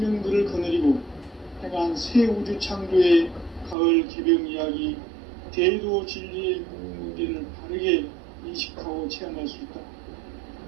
거느리고 행한 새 우주 창조의 가을 개병 이야기 대도 진리의 문제를 바르게 인식하고 체험할 수 있다.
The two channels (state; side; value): drops out; left; at 3.8 s